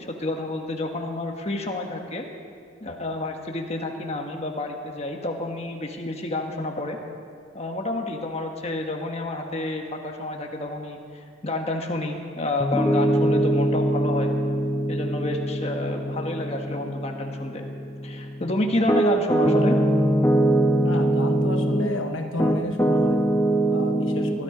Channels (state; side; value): normal; both; correlation 0.70